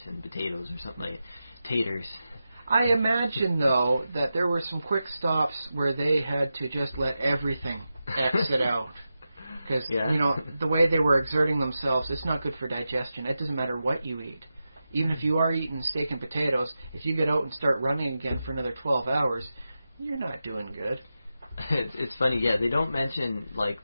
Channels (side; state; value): both; inverted; correlation -0.91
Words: and potatoes or something like taters. I imagine, though, that there were some quick stops where they had to just let everything exit out. Because, Yeah. you know, the way they were exerting themselves, it's not good for digestion. It doesn't matter what you eat. Even if you are eating steak and potatoes, if you get out and start running again for another 12 hours, you're not doing good. It's funny, yeah. They don't mention like